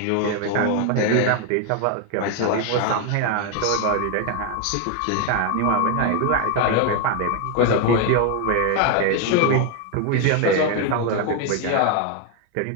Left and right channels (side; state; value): both; different; correlation 0.01